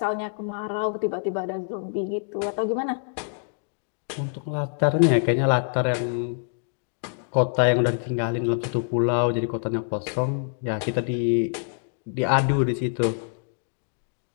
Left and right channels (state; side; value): silent; right; digital silence